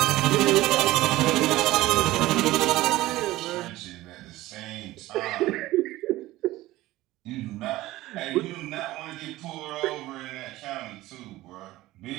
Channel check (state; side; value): quieter; left; 17.1 dB